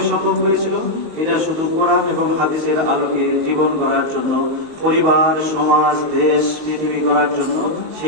সম্ভব হয়েছিল? এটা শুধু কোরআন এবং হাদিসের আলোকে জীবন গড়ার জন্য, পরিবার, সমাজ, দেশ, পৃথিবী গড়ার জন্য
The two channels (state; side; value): late; left; 19 ms